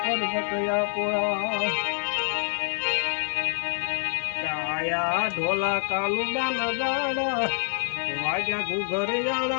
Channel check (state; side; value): silent; right; digital silence